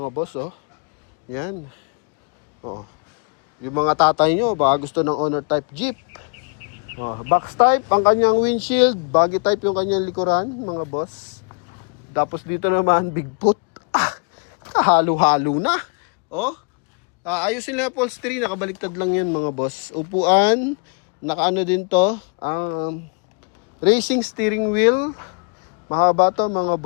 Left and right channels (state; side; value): quieter; right; 39.1 dB